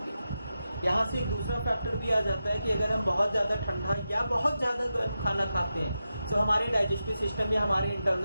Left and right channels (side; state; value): both; inverted; correlation -0.90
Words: यहाँ से एक दूसरा फैक्टर भी आ जाता है कि अगर हम बहुत ज़्यादा ठंडा या बहुत ज़्यादा गर्म खाना खाते हैं तो हमारे डाइजेस्टिव सिस्टम या हमारे